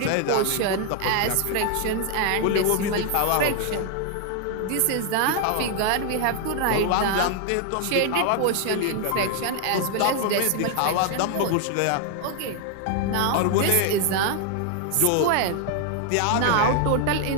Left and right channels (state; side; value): different; both; correlation 0.00